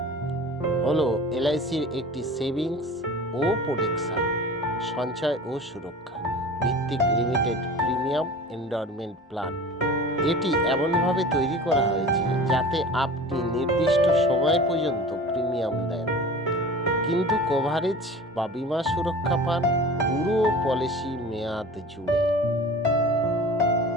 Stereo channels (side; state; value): both; normal; correlation 0.39